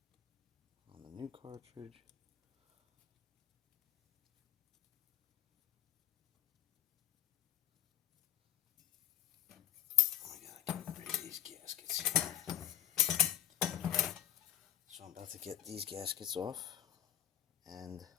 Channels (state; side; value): quieter; right; 12.8 dB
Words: On the new cartridge. Oh my god, I gotta get rid of these gaskets here. So I'm about to get these gaskets off and